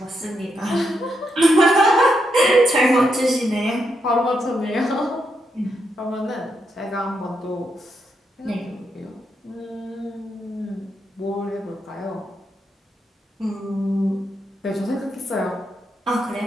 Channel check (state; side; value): normal; both; correlation 0.81